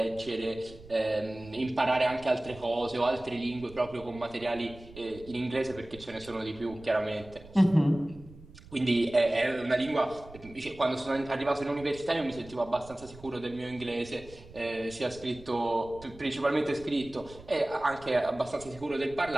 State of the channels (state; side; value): noise; right; rumble, 20 dB below the sound